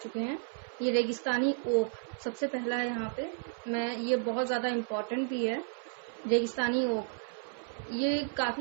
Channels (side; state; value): left; silent; 56 dB below the other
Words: हैं। ये रेगिस्तानी ओक सबसे पहला है यहाँ पे। ये बहुत ज़्यादा इम्पोर्टेंट भी है। रेगिस्तानी ओक ये